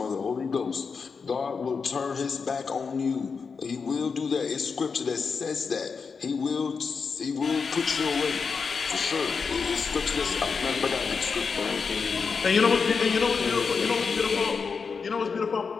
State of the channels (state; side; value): quieter; right; 5.3 dB